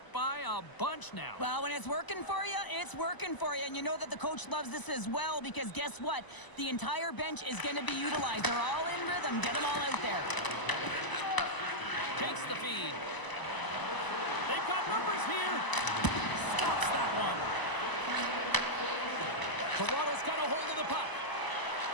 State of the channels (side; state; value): right; late; 1.0 ms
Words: by a bunch now. Well, when it's working for you, it's working for you. And you know that the coach loves this as well because guess what? The entire bench is going to be utilized. They're all in rhythm. Get them all out there. Takes the feed. They've got numbers here. Stops that one. Toronto's got a hold of the puck.